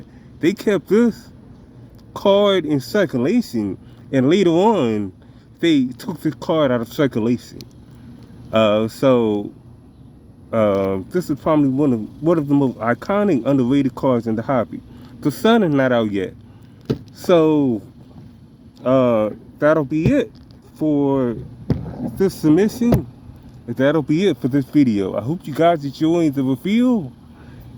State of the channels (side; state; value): both; identical; correlation 1.00